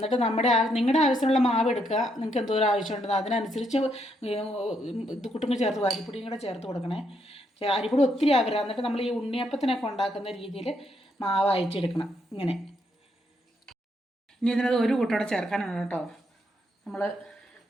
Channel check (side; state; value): both; normal; correlation 0.76